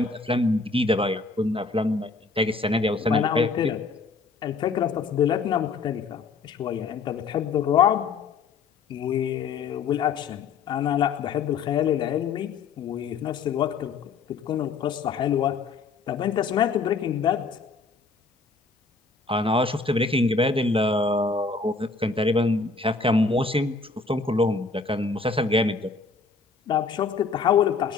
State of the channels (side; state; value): right; quieter; 4.5 dB